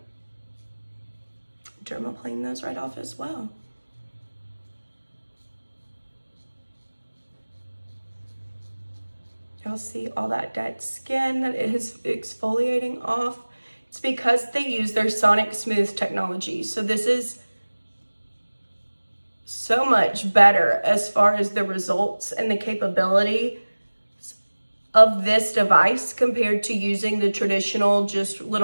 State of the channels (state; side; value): inverted; both; correlation -1.00